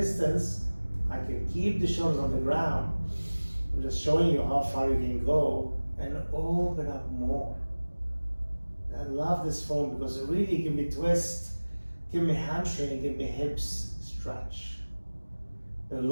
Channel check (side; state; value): both; inverted; correlation -1.00